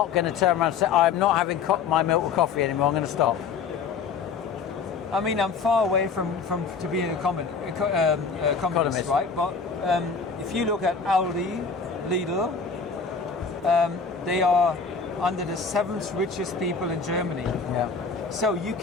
going to turn around and say, I'm not having my milk or coffee anymore, I'm going to stop. I mean, I'm far away from to being a economist, right? But if you look at Aldi, Lidl, they are under the 7th richest people in Germany. Yeah. So you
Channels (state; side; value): quieter; right; 5.4 dB